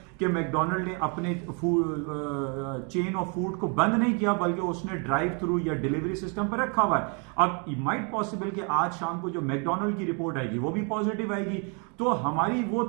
कि मैकडोनल्ड ने अपने चेन ऑफ फूड को बंद नहीं किया, बल्कि उसने ड्राइव थ्रू या डिलीवरी सिस्टम पर रखा हुआ है। अब माइट पॉसिबल कि आज शाम को जो मैकडोनल्ड की रिपोर्ट आएगी वो भी पॉजिटिव आएगी। तो हमारी वो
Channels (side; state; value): left; quieter; 36.2 dB